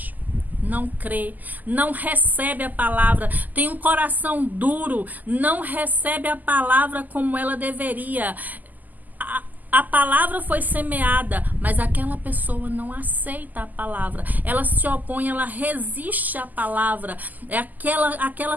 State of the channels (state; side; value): late; left; 0.083 ms